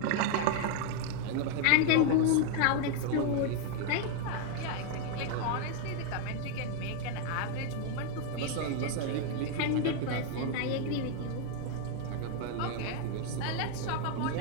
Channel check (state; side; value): different; both; correlation 0.01